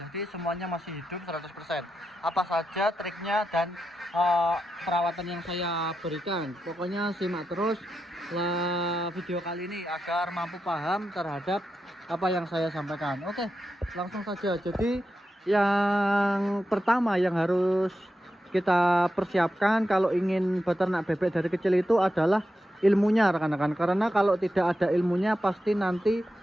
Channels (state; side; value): normal; both; correlation 0.88